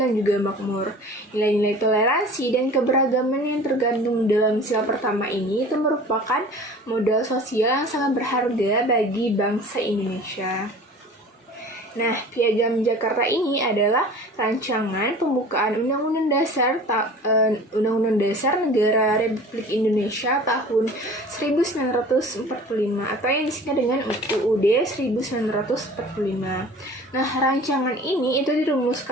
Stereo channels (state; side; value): normal; both; correlation 0.43